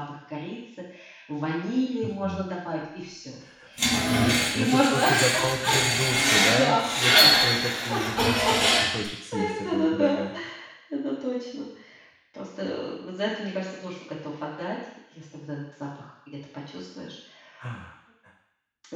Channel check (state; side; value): identical; both; correlation 1.00